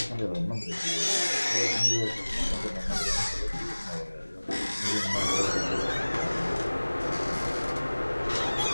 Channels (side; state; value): both; inverted; correlation -1.00